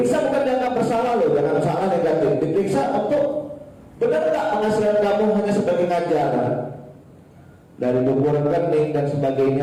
bukan dianggap bersalah loh, jangan salah negatif. Diperiksa untuk benar nggak penghasilan kamu hanya sebagai ngajar, dari buku rekening dan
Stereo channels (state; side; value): identical; both; correlation 1.00